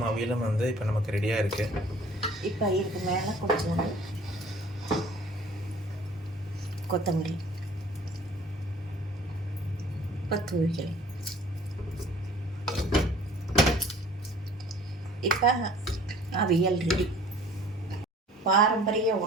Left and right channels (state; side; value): normal; both; correlation 0.51